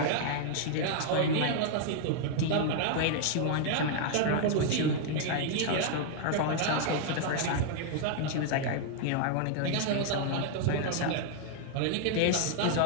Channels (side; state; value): both; different; correlation 0.00